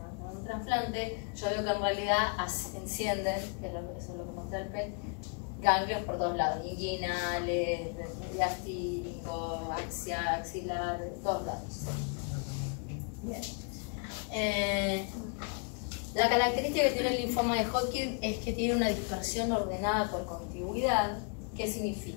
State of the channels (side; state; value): right; quieter; 38.5 dB